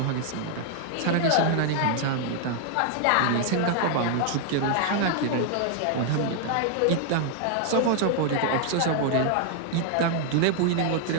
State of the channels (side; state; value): both; different; correlation 0.00